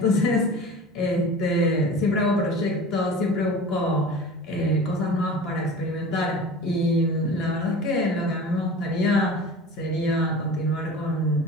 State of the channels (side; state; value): both; normal; correlation 0.37